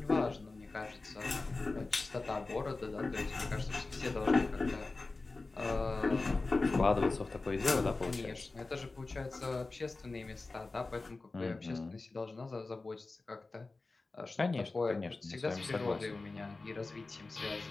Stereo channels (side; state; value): right; quieter; 3.5 dB